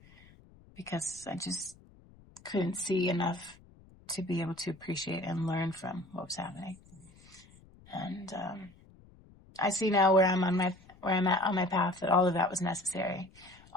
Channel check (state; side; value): noise; left; rumble, 25 dB below the sound